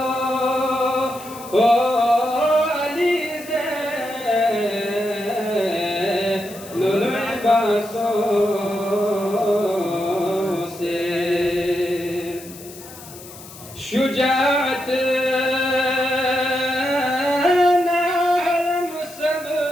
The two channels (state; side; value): noise; left; hiss, 17 dB below the sound